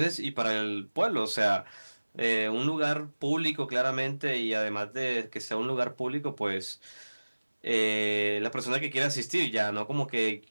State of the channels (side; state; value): both; inverted; correlation -1.00